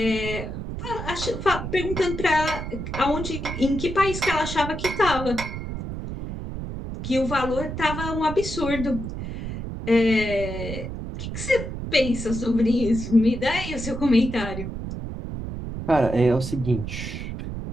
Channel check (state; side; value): noise; right; rumble, 6 dB below the sound